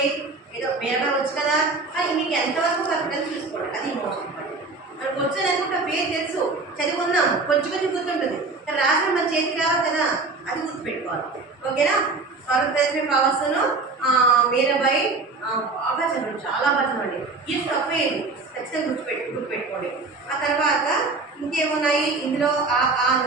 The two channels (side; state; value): left; quieter; 3.8 dB